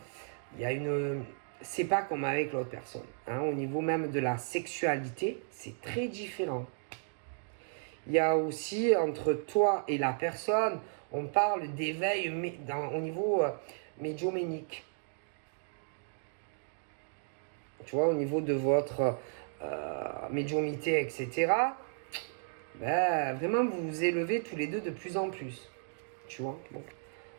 Il y a une... C'est pas comme avec l'autre personne. Hein, au niveau même de la sexualité, c'est très différent. Il y a aussi entre toi et la personne, on parle d'éveil au niveau médiumnique. Tu vois, au niveau de votre médiumnité, etc. Ben, vraiment, vous vous élevez tous les deux de plus en plus. Tu vois, bon.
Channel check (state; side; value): silent; left; digital silence